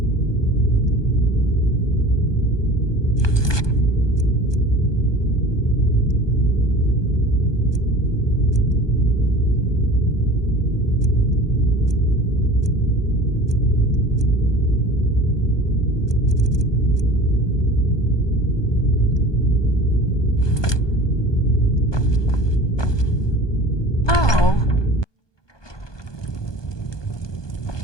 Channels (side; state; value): right; late; 1.2 ms